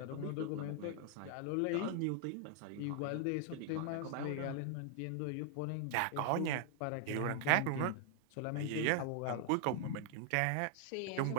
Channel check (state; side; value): different; both; correlation 0.00